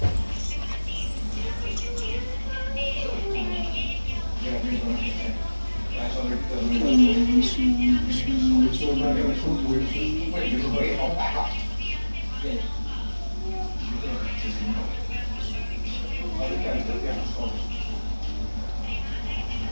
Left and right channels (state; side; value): inverted; both; correlation -1.00